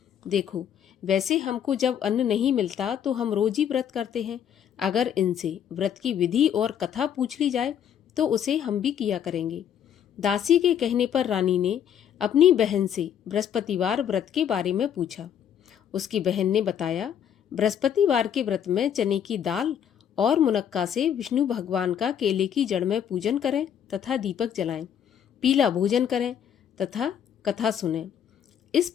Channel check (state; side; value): quieter; right; 9.0 dB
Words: देखो, वैसे हमको जब अन्न नहीं मिलता तो हम रोज ही व्रत करते हैं। अगर इनसे व्रत की विधि और कथा पूछ ली जाए तो उसे हम भी किया करेंगे। दासी के कहने पर रानी ने अपनी बहन से बृहस्पतिवार व्रत के बारे में पूछा। उसकी बहन ने बताया, बृहस्पतिवार के व्रत में चने की दाल और मुनक्का से विष्णु भगवान का केले की जड़ में पूजन करें तथा दीपक जलाएं, पीला भोजन करें तथा कथा सुनें। इस